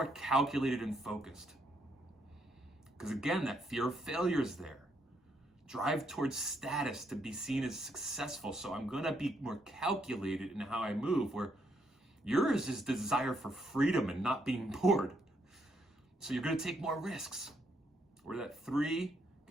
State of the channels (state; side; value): normal; both; correlation 0.75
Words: calculated and focused. Because again, that fear of failure is there. Drive towards status to be seen as successful, so I'm going to be more calculated in how I move, where yours is desire for freedom and not being bored. So you're going to take more risks. Where that 3